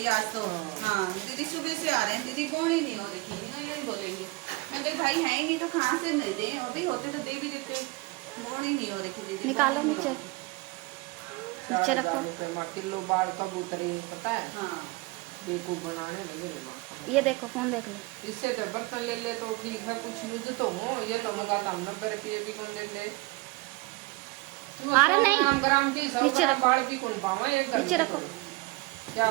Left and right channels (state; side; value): quieter; left; 23.7 dB